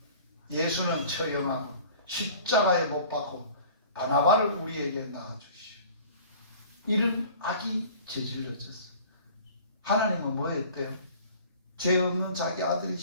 예수는 처형하고 십자가에 못 박고 바나바를 우리에게 낳아주시오. 이런 악이 저질러졌어요. 하나님은 뭐 했대요? 죄 없는 자기 아들이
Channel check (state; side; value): inverted; both; correlation -0.47